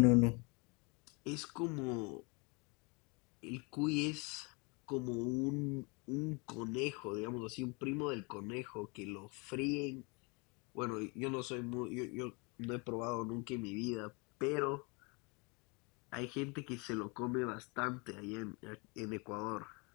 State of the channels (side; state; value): right; quieter; 30.3 dB